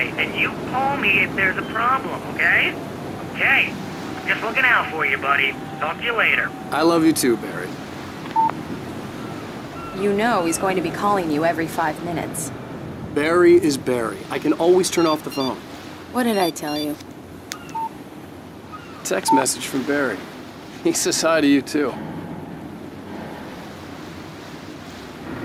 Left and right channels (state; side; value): identical; both; correlation 1.00